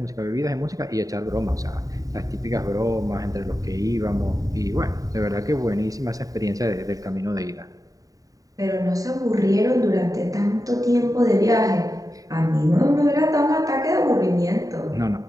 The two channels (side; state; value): left; late; 0.17 ms